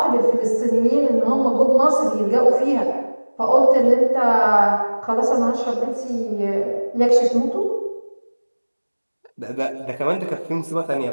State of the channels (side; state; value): both; inverted; correlation -1.00